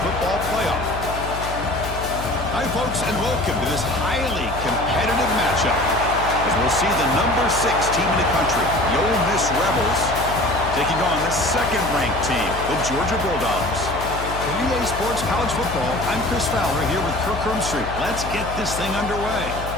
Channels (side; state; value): left; noise; hum, 8 dB below the sound